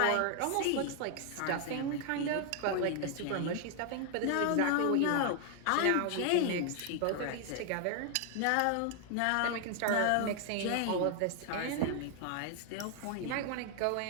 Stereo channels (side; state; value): both; different; correlation 0.00